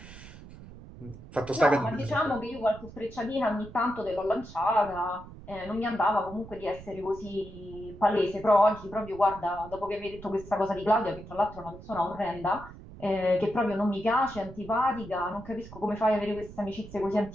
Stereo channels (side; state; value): right; noise; rumble, 16 dB below the sound